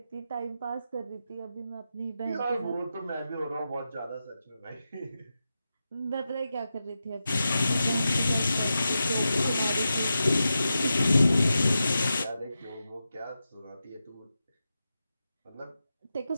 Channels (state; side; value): inverted; both; correlation -0.90